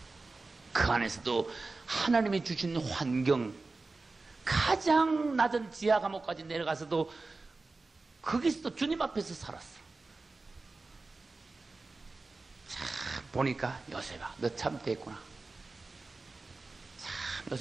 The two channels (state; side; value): quieter; left; 3.6 dB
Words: 그 안에서도 하나님이 주신 환경, 가장 낮은 지하 감옥까지 내려가서도 거기서도 주님 앞에서 살았어. 참 보니까 요셉아, 너 참 됐구나. 참